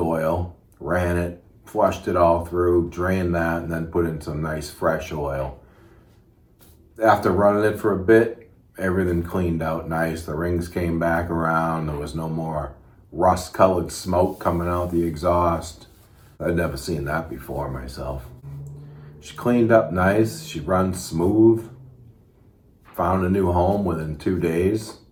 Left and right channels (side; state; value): both; identical; correlation 1.00